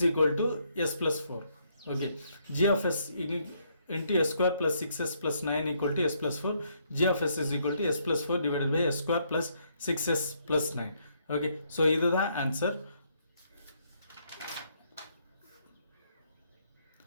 equal to s plus 4. Okay, g of s into s square plus 6s plus 9 equal to s plus 4. g of s is equal to s plus 4 divided by s square plus 6s plus 9. Okay, so இதுதான் answer.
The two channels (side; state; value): both; inverted; correlation -0.72